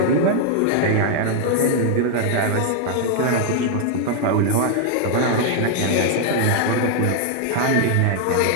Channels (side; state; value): both; different; correlation 0.00